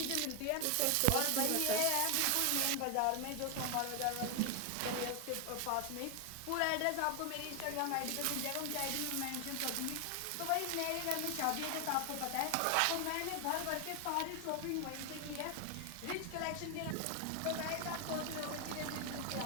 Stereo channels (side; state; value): both; different; correlation 0.00